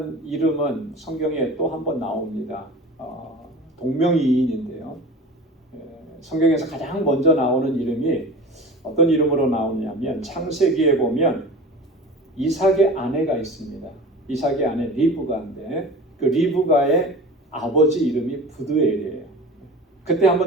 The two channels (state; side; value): normal; both; correlation 0.37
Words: 이름은 성경에 또 한 번 나옵니다. 동명이인인데요. 성경에서 가장 먼저 나오는 이름이 어떤 이름으로 나오냐면 창세기에 보면 이삭의 아내가 있습니다. 이삭의 아내 리브가인데 그 리브가의 아버지 이름이 부드엘이에요. 그때 한번